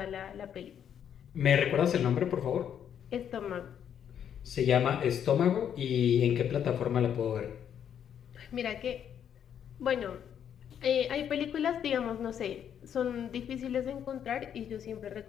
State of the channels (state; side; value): quieter; right; 8.9 dB